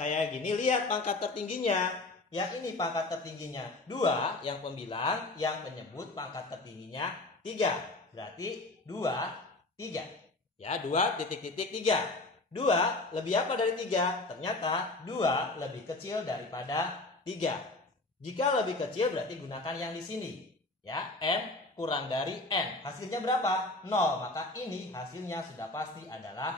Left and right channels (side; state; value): right; quieter; 3.0 dB